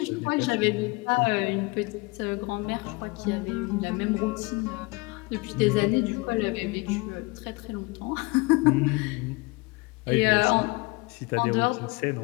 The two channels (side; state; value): right; quieter; 25.6 dB